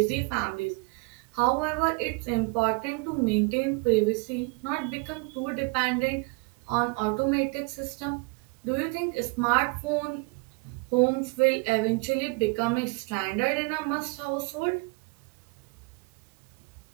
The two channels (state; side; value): quieter; left; 29.4 dB